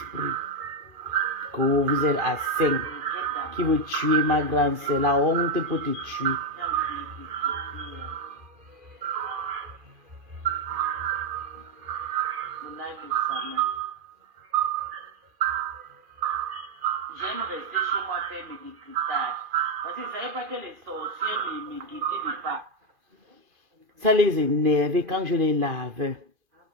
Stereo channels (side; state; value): left; late; 2.4 ms